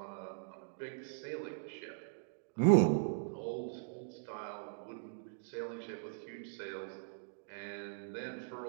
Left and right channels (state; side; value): silent; left; digital silence